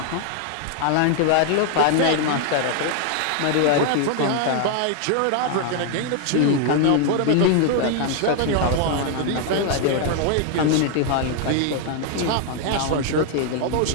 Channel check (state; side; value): different; both; correlation 0.00